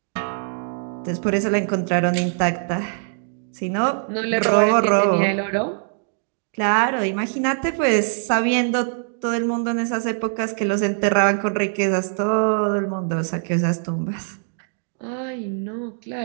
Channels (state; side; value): silent; left; 64 dB below the other